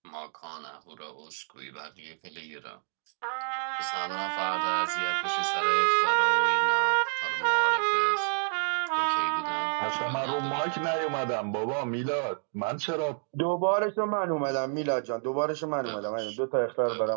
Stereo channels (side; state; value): left; silent; 59 dB below the other